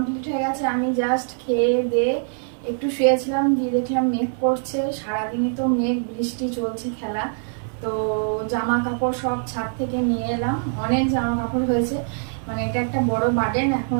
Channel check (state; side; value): silent; left; digital silence